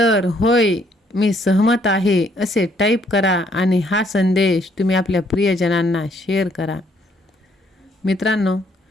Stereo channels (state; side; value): normal; both; correlation 0.68